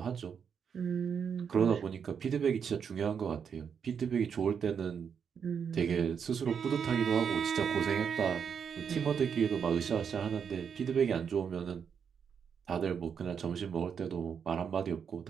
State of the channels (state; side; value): quieter; left; 7.1 dB